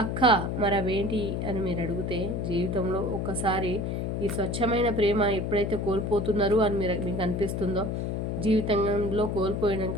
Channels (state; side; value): noise; left; hum, 2 dB below the sound